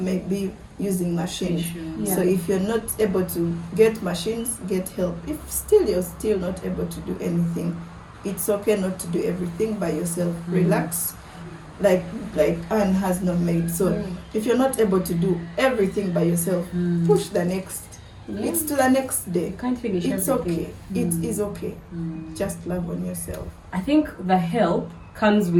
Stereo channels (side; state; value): both; identical; correlation 1.00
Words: be using machines. Yeah. So if you're not able to get machines, get help. If still you're still not able to do anything, it's okay not to do everything by yourself. Relax, like Anne has no maid. So if you're not able to do everything by yourself, push the next. It's to the next day. You can't finish It's everything. okay. It is okay. Just love on yourself. I think the help comes